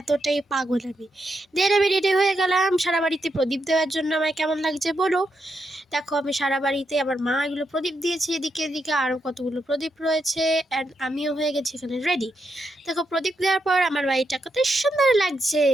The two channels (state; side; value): normal; both; correlation 0.82